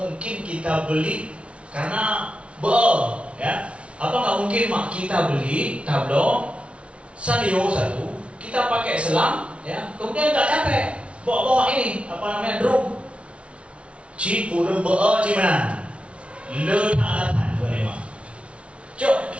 kita beli karena ya, apa nggak mungkin mak kita beli tablo sadio satu, kita pakai selang, ya, kemudian nggak capek bawa ini apa namanya drum, cipu cimana, letak boleh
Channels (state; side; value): late; left; 0.061 ms